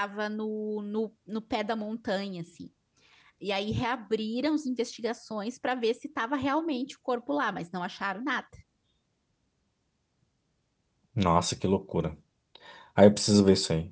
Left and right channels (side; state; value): both; identical; correlation 1.00